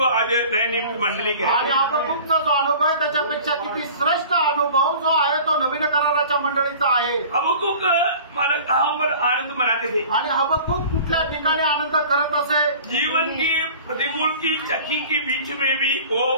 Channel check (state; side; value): inverted; both; correlation -0.43